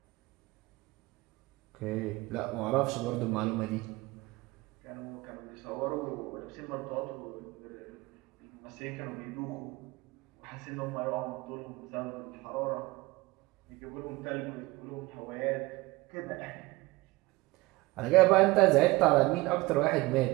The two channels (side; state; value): left; quieter; 21.3 dB